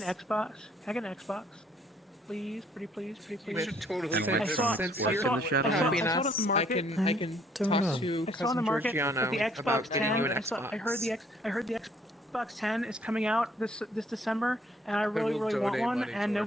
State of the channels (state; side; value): normal; both; correlation 0.64